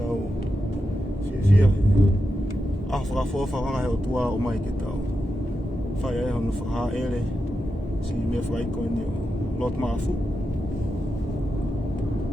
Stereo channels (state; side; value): normal; both; correlation 0.88